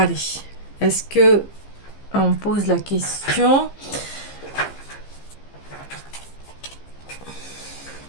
est-ce que on pose la question,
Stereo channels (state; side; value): late; right; 15 ms